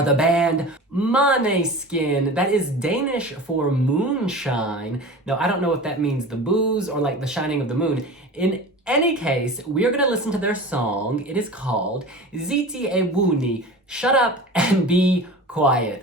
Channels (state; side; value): normal; both; correlation 0.35